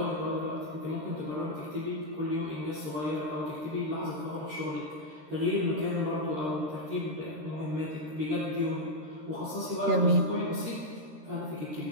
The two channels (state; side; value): late; left; 13 ms